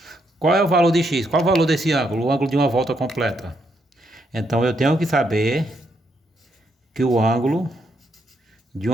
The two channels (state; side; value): normal; both; correlation 0.77